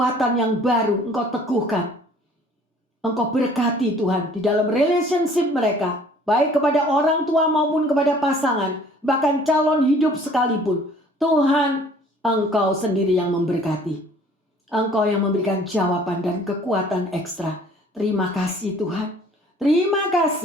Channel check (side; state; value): both; normal; correlation 0.54